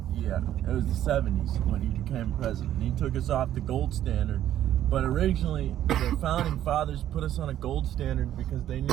Yeah, it was the 70s when he became president. He took us off the gold standard. But originally, the founding fathers put us on a gold standard because they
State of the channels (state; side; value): quieter; left; 11.8 dB